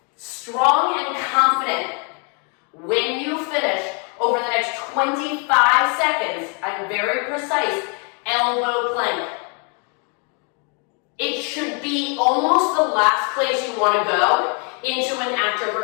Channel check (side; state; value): right; quieter; 37.2 dB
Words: Strong and confident. When you finish, over the next 25 seconds, I'm very precise, elbow plank. It should be almost the last place you want to go into an active